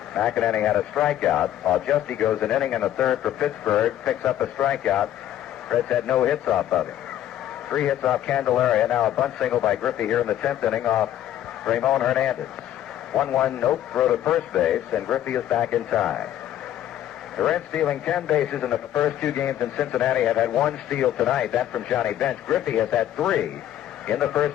McInerney had a strikeout, while Justy goes an inning and a 1/3 for Pittsburgh, picks up a strikeout. Reds had no hits off of him. 3 hits off Candeleria. Now a bunt single by Griffey here in the 10th inning off Ramon Hernandez. 1-1 nope throw to first base, and Griffey is back in time. The Reds stealing 10 bases in the first 2 games in Cincinnati have had 1 steal tonight. That from Johnny Bench. Griffey has had 3 in the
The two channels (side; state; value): right; quieter; 11.9 dB